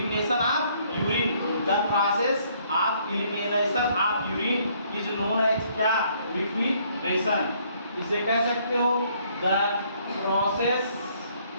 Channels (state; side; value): inverted; both; correlation -0.65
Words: of urine. The process of elimination of urine is known as क्या? लिक्विडेशन। इसे कह सकते हो the process